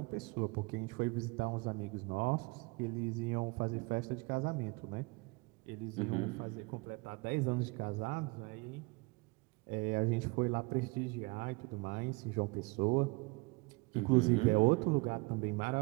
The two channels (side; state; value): left; quieter; 26.7 dB